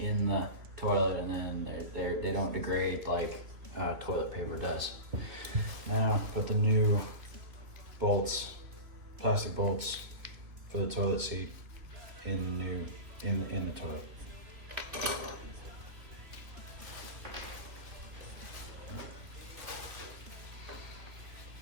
the toilet and then they don't degrade like toilet paper does. Now put the new bolts, plastic bolts for the toilet seat in the toilet.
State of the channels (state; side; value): late; left; 3.0 ms